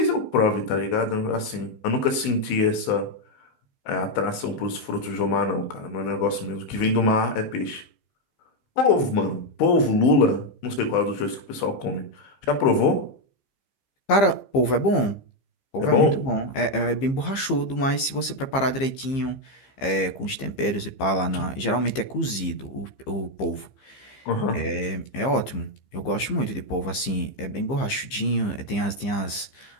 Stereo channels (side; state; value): right; late; 15 ms